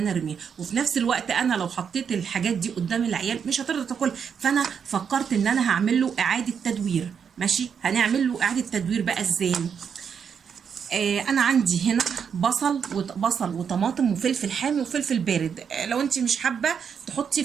ارميه. وفي نفس الوقت انا لو حطيت الحاجات دي قدام العيال مش هترضى تاكل، فانا فكرت ان انا هعمل له اعادة تدوير. ماشي، هنعمل له اعادة تدوير بقى ازاي؟ انا عندي هنا بصل وطماطم وفلفل حامي وفلفل بارد. لو انت مش حابه تحطي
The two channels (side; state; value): left; quieter; 7.1 dB